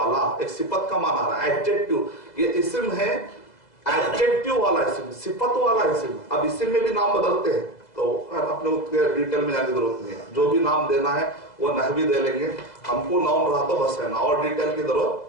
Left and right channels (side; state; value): right; late; 2.0 ms